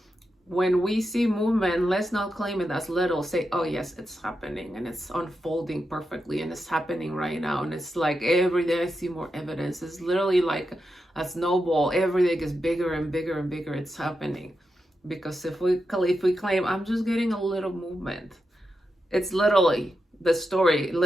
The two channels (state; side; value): normal; both; correlation 0.87